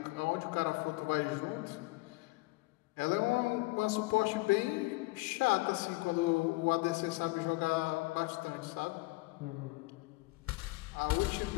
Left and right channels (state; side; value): quieter; right; 23.5 dB